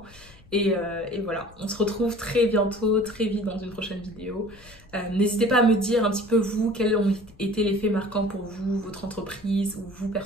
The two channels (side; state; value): left; noise; rumble, 24 dB below the sound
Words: Et voilà, on se retrouve très bientôt, très vite dans une prochaine vidéo. N'hésitez pas à me dire un petit peu vous, quels ont été les faits marquants pour vous, votre entreprise ou vous